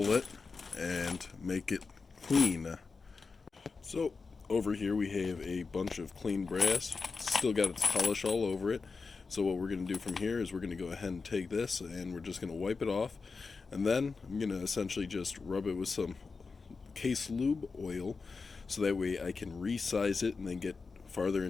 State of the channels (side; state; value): right; quieter; 4.5 dB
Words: it and make it clean. So over here we have a bunch of clean brass. Still got its polish all over it. So what we're going to do from here is we're going to go ahead and take this and we're just going to wipe it off. And then I'm going to essentially just rub it with some case lube oil so that way I can resize it and then get farther